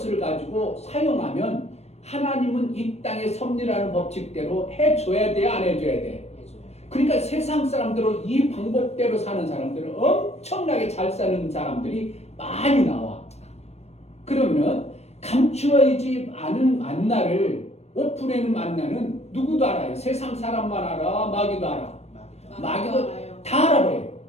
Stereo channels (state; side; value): late; right; 0.31 ms